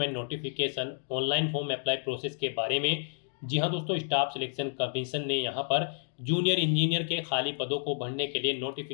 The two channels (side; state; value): right; silent; digital silence